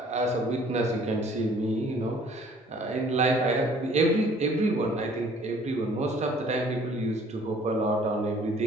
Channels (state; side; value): normal; both; correlation 0.56